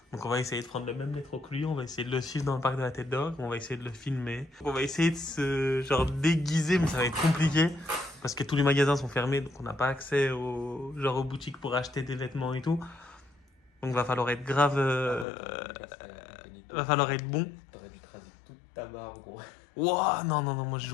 Donc on va essayer de prendre le même métro que lui, on va essayer de le suivre dans le parc de la Tête d'Or, on va essayer de le filmer. On va essayer de se genre déguiser, mais ça va être compliqué parce que tous les magasins sont fermés, donc on n'a pas accès aux boutiques pour acheter des vêtements et tout. Donc va falloir être grave, va falloir être bon. T'aurais dû te raser toute ta barbe, gros. Ouah, non, moi je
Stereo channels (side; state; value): right; drops out; at 15.2 s